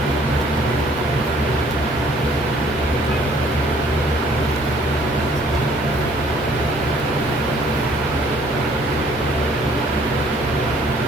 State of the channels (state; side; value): normal; both; correlation 0.59